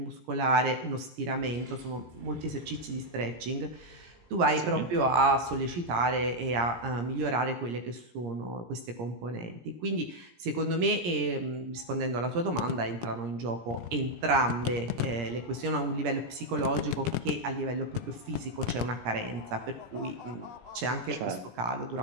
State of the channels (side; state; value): left; late; 17 ms